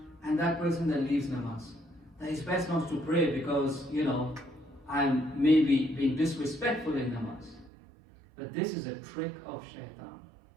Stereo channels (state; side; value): drops out; left; at 7.7 s